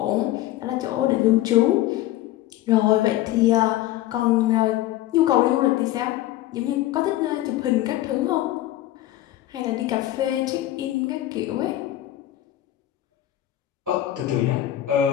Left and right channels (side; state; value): right; quieter; 14.6 dB